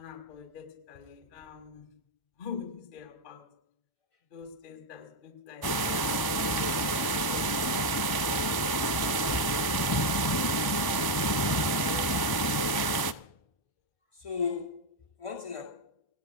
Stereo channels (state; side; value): late; right; 1.1 ms